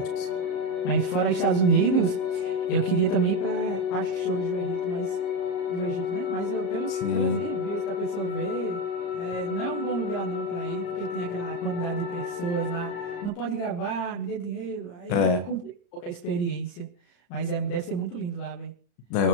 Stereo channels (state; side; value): late; right; 35 ms